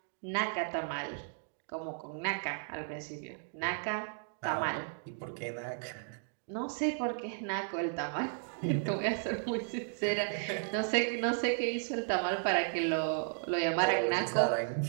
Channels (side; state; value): left; silent; digital silence